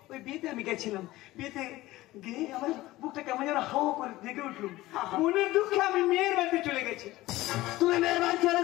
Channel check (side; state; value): right; quieter; 17.6 dB